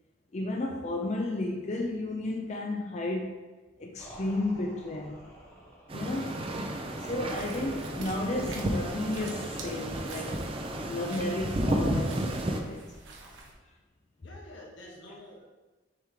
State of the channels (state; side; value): normal; both; correlation 0.64